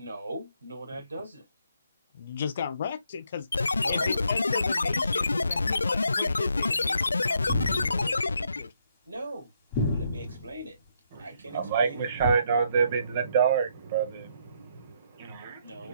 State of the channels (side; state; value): both; inverted; correlation -0.74